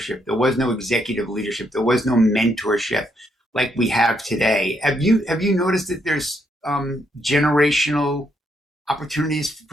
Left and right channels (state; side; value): normal; both; correlation 0.75